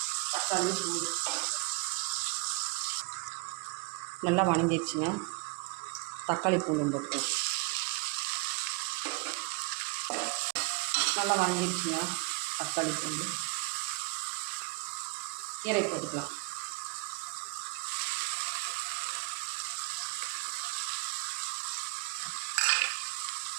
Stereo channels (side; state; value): left; quieter; 27.5 dB